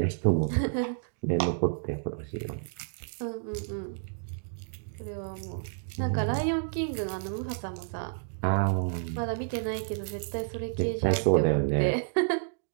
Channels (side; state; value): left; silent; digital silence